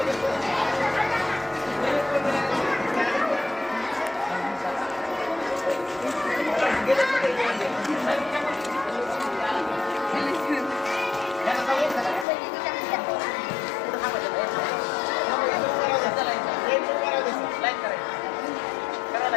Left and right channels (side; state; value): right; drops out; at 12.2 s